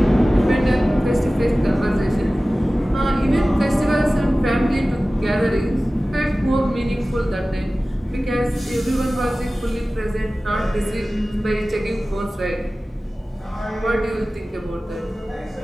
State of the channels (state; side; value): normal; both; correlation 0.97